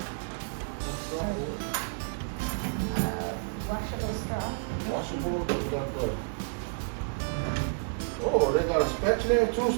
Washable straw. Washable. They got the. Oh, they got a spatula, two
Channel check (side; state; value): left; silent; digital silence